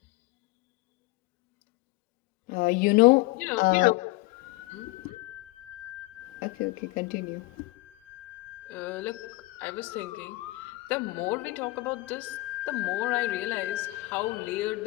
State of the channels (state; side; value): quieter; right; 21.6 dB